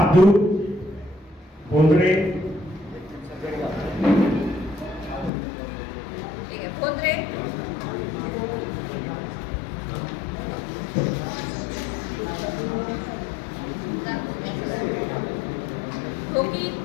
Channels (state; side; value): drops out; right; at 5.3 s